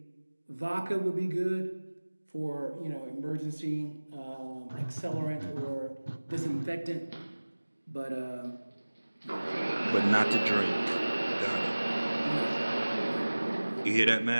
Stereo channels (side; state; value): both; inverted; correlation -1.00